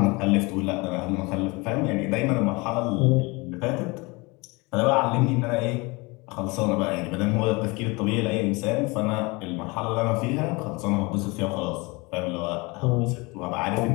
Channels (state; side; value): quieter; right; 25.9 dB